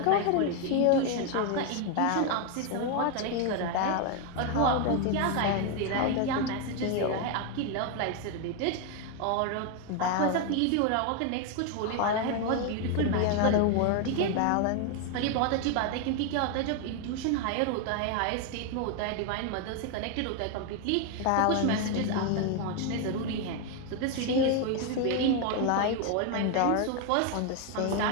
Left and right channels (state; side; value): different; both; correlation 0.01